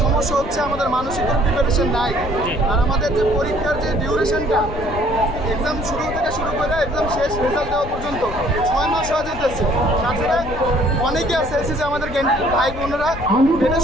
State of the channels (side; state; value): left; noise; rumble, 11 dB below the sound